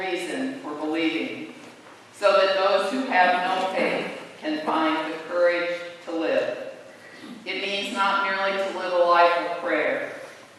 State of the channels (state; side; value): identical; both; correlation 1.00